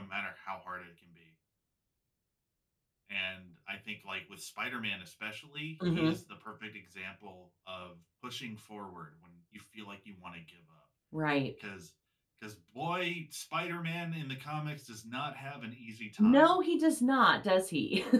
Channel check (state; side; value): identical; both; correlation 1.00